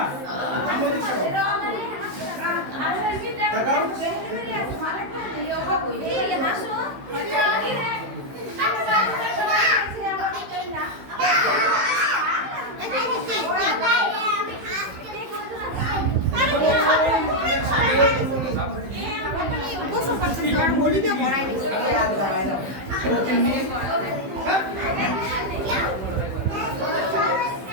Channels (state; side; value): late; left; 15 ms